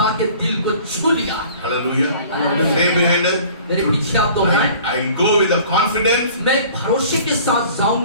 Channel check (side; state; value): both; inverted; correlation -0.48